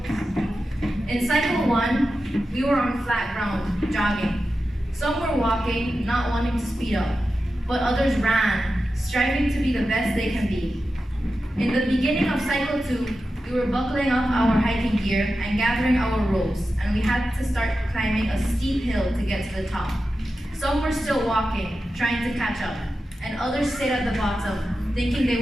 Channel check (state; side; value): normal; both; correlation 0.92